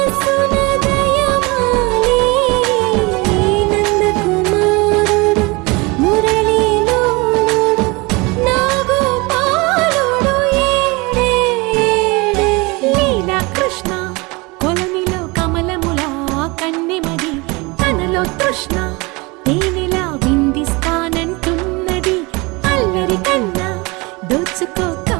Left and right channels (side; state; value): left; quieter; 25.6 dB